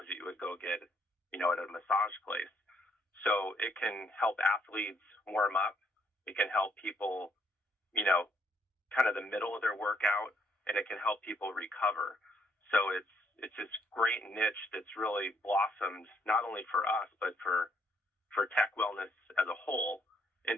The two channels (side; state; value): both; normal; correlation 0.70